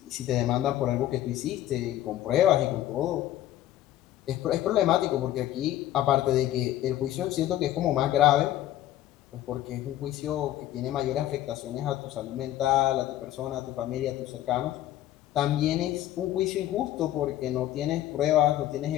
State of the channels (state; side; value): quieter; right; 13.3 dB